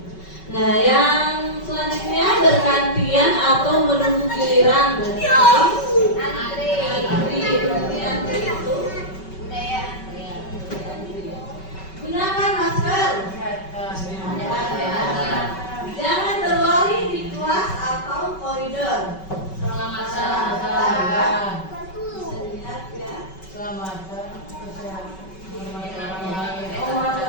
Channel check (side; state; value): right; late; 5.3 ms